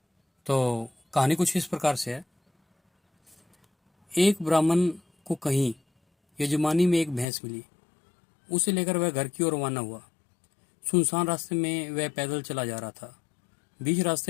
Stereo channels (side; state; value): right; drops out; at 7.2 s